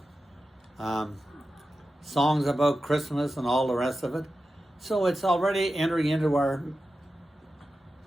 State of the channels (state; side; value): normal; both; correlation 0.92